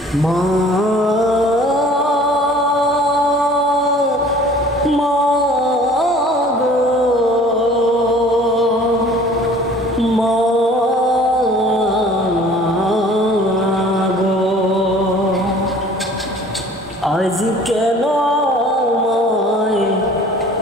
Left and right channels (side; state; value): both; normal; correlation 0.50